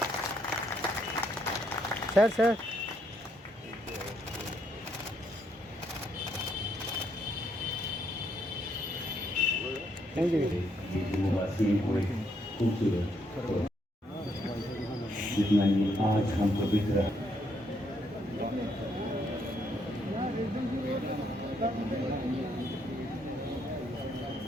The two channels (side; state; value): both; normal; correlation 0.74